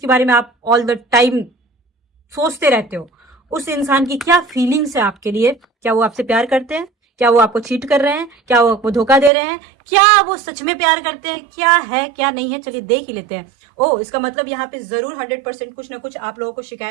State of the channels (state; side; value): drops out; left; at 9.3 s